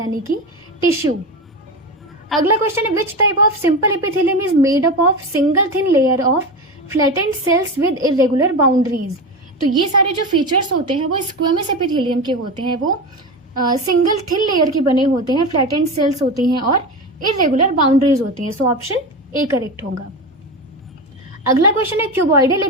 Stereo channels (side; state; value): both; normal; correlation 0.22